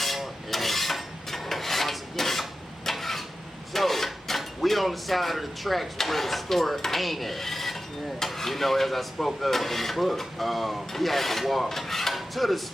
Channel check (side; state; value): both; normal; correlation 0.93